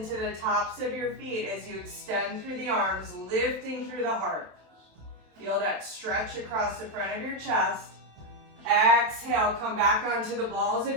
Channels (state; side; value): late; left; 27 ms